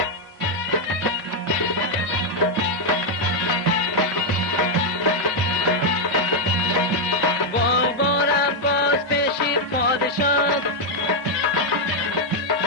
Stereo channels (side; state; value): both; normal; correlation 0.00